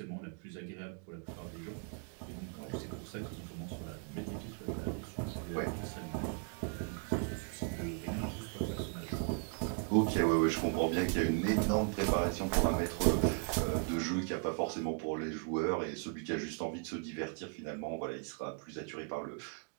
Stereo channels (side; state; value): left; quieter; 38.7 dB